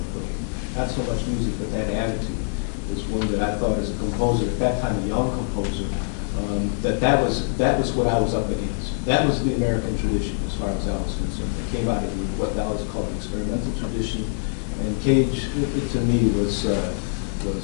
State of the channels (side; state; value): right; silent; 63 dB below the other